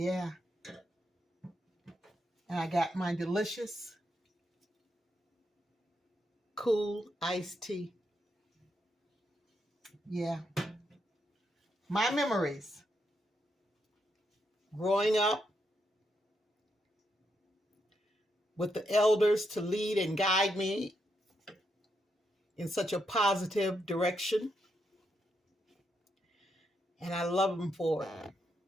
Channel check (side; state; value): both; normal; correlation 0.81